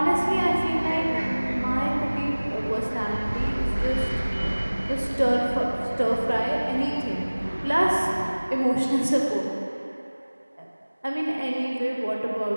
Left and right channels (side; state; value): both; inverted; correlation -1.00